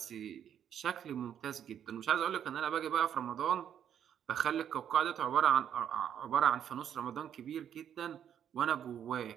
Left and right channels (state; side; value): quieter; left; 9.3 dB